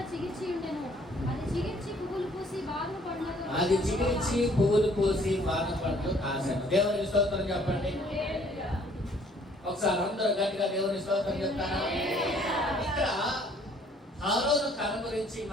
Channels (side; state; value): both; normal; correlation 0.60